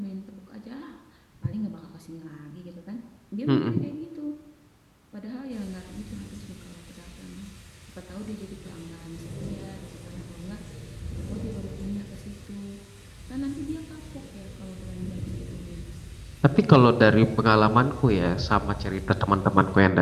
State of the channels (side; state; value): both; identical; correlation 1.00